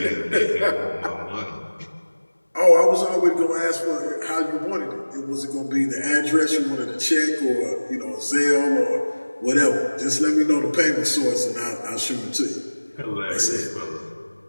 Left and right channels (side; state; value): both; inverted; correlation -1.00